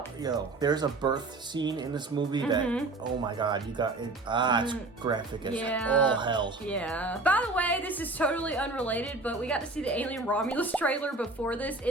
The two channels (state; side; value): quieter; left; 3.2 dB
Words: Yo, there's a birth scene in this movie that, oh my god, you got it. It's graphic as all hell. Yeah. By the way, this is totally unrelated, but we got to see the Alien Romulus trailer before this